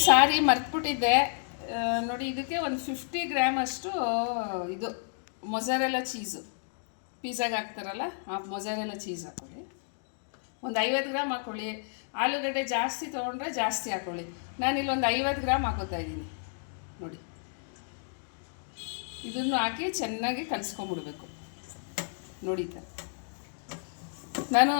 ಸಾರಿ ಮರ್ತ್ಬಿಟ್ಟಿದ್ದೆ. ನೋಡಿ, ಇದಕ್ಕೆ ಒಂದು 50 ಗ್ರಾಮ್ ಅಷ್ಟು ಇದು ಮೊಜರೆಲ್ಲಾ ಚೀಸು, ಪಿಜ್ಜಾಗೆ ಹಾಕ್ತಾರಲ್ಲ ಆ ಮೊಜರೆಲ್ಲಾ ಚೀಸ್ ಹಾಕ್ಕೊಳ್ಳಿ. ಒಂದು 50 ಗ್ರಾಮ್ ಹಾಕ್ಕೊಳ್ಳಿ. ಆಲೂಗಡ್ಡೆ ಜಾಸ್ತಿ ತೊಗೊಂಡ್ರೆ ಜಾಸ್ತಿ ಹಾಕ್ಕೊಳ್ಳಿ. ನಾನಿಲ್ಲಿ ಒಂದು 50 ಗ್ರಾಮ್ ಹಾಕೋತಾ ಇದ್ದೀನಿ. ನೋಡಿ, ಇದನ್ನು ಹಾಕಿ ಚೆನ್ನಾಗಿ ಕಲಿಸ್ಕೊಂಬಿಡ್ಬೇಕು. ನೋಡಿ, ನಾನು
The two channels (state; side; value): silent; right; digital silence